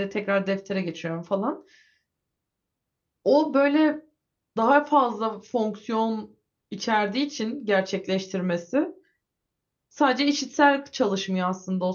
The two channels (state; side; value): identical; both; correlation 1.00